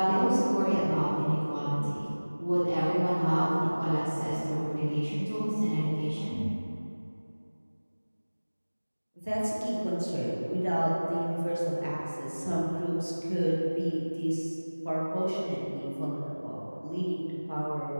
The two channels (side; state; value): both; inverted; correlation -1.00